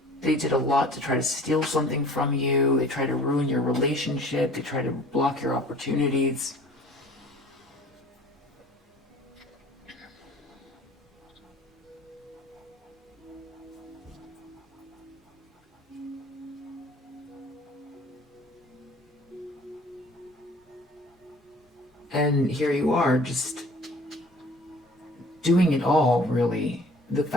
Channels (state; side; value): normal; both; correlation 0.48